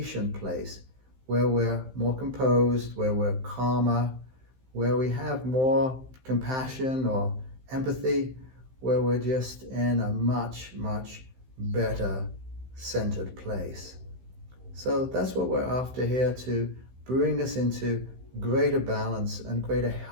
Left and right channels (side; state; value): left; late; 15 ms